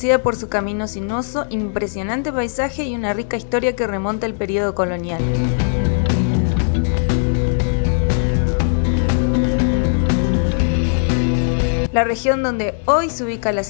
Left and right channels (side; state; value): right; silent; digital silence